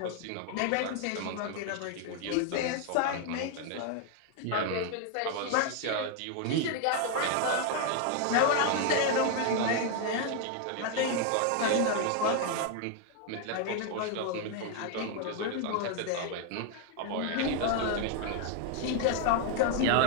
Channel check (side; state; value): both; different; correlation 0.01